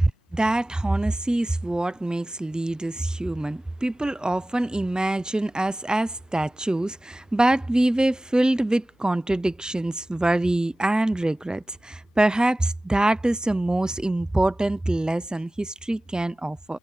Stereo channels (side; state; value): both; normal; correlation 0.97